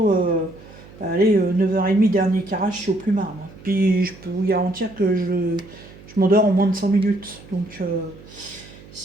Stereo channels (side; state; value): right; noise; hum, 20 dB below the sound